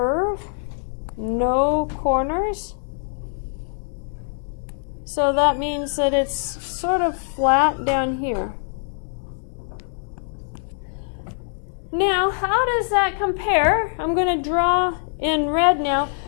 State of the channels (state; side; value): silent; right; 63 dB below the other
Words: No corners. So that means that it's sort of flat down here. Now, how does that compare? I'm going to draw in red now